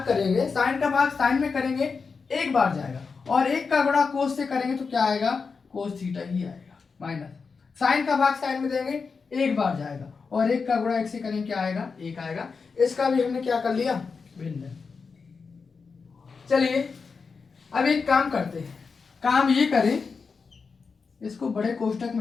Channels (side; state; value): right; quieter; 5.0 dB